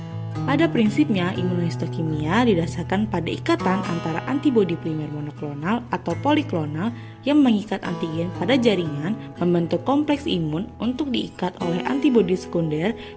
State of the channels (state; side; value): identical; both; correlation 1.00